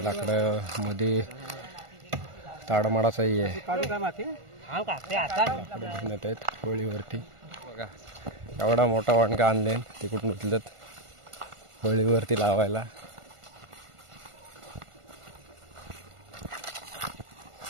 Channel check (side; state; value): left; late; 1.5 ms